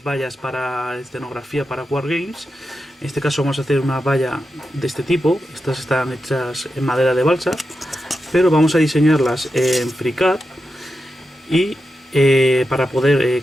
vallas para escenografía para Wargames. En este caso vamos a hacer una valla de este tipo. Estas están hechas en madera de balsa, pero vamos a diseñarlas en FreeCAD y para poder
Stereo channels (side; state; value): both; normal; correlation 0.89